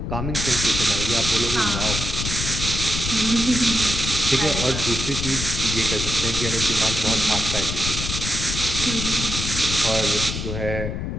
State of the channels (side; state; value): left; noise; rumble, 4 dB below the sound